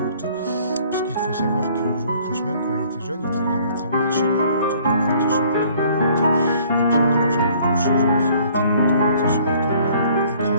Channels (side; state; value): both; inverted; correlation -0.58